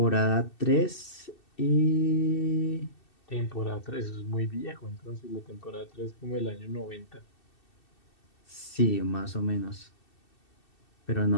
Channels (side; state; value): right; late; 2.7 ms